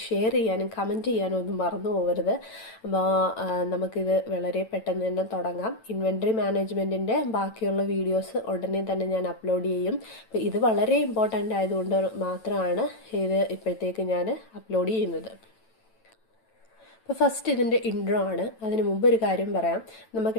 ഷെയർ ചെയ്യാനും കമൻറ്റ് ചെയ്യാനും ഒന്നും മറന്നു പോകരുത്. അപ്പോൾ നമുക്കിത് വളരെ പെട്ടെന്ന് തന്നെ തുടങ്ങാം. ഇൻവെൻട്രി മാനേജ്മെൻറ്റിൻ്റെ ബാക്കിയുള്ള വീഡിയോസ് ഉടനെ തന്നെ ഞാൻ അപ്ലോഡ് ചെയ്യും. അപ്പോൾ ഇത് വളരെ ഇമ്പോർട്ടൻ്റ് ആയതുകൊണ്ട് മാത്രമാണ് ഇത് ഇപ്പോഴത്തേക്ക് ഞാൻ അപ്ലോഡ് ചെയ്യുന്നത്. അപ്പോൾ ഫസ്റ്റ് ഇതിൻ്റെ ഇൻട്രോ ആണ്. അതിന് മുമ്പ് ഒരു കാര്യം പറയാം.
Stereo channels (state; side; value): late; right; 9.0 ms